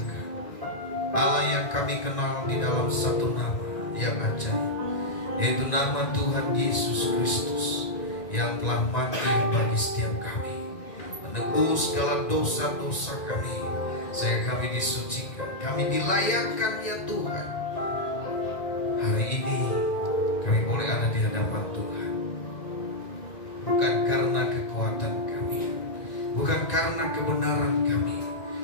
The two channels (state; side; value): late; right; 1.9 ms